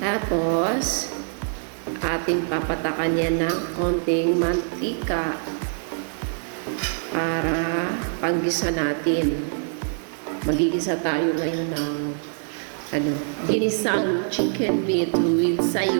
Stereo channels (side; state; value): left; silent; 58 dB below the other